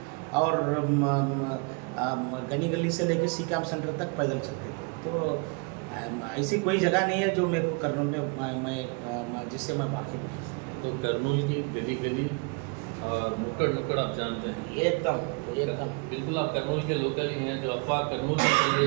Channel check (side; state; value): left; quieter; 32.1 dB